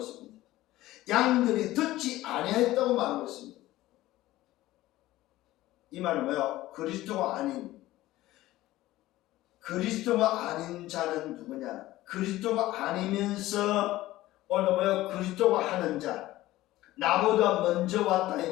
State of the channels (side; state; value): right; quieter; 16.4 dB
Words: 양들이 듣지 아니했다고 말하고 있습니다. 이 말은 뭐예요? 그리스도가 아닌 자는 누구냐? 그리스도가 아니면서 오늘 뭐예요? 그리스도가 하는 자, 나보다 먼저 왔다 이